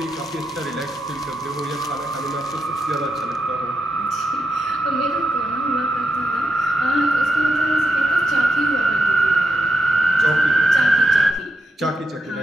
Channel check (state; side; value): normal; both; correlation 0.84